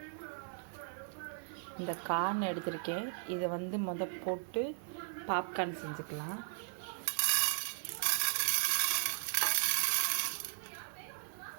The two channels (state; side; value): silent; left; 53 dB below the other